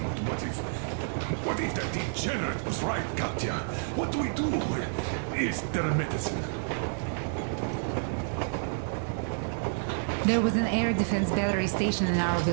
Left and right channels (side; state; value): left; silent; 56 dB below the other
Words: What if that degenerate was right, Katya? What do we do? Is there a medicine? There was an air defense battery station in our